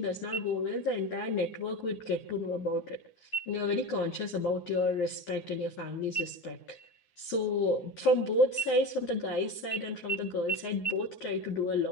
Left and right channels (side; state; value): right; late; 9.5 ms